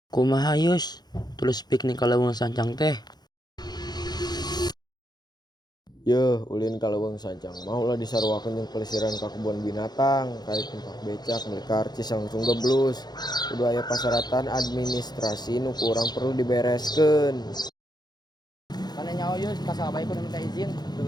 Kumaha Yus, tulus piknik ka Leuweung Sancang teh. Yeuh, ulin ka Leuweung Sancang. Maulah disarwakeun jeung pelesiran ka kebun binatang, kali tempat becak, meuli karcis langsung geblus. Kudu aya pasyaratan administrasi nu kurang perlu dibereskeun. Kana nyaho Yus, kasabay kudu minta izin.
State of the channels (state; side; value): late; right; 0.20 ms